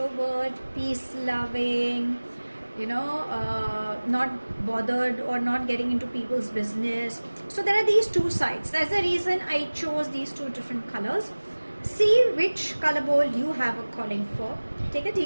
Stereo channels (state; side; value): inverted; both; correlation -1.00